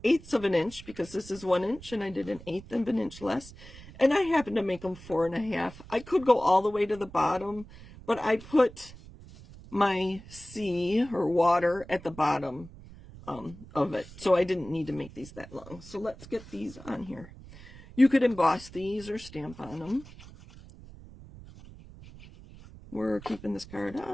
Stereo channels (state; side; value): noise; right; rumble, 18 dB below the sound